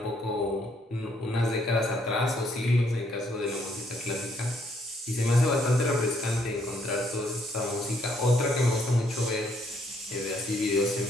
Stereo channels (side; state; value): both; normal; correlation 0.69